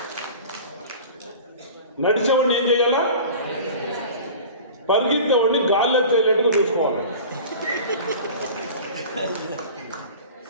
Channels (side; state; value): both; inverted; correlation -0.38